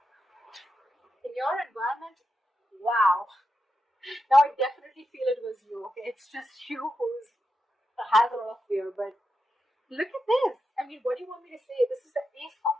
your environment, wow. Now I definitely feel it was you, okay? It's just you has a lot of fear, but look at this. I mean, what do you want me to say? This is the Ace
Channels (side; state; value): both; normal; correlation 0.87